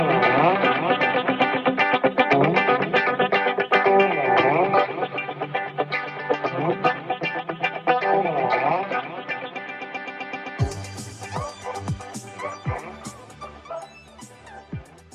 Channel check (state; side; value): identical; both; correlation 1.00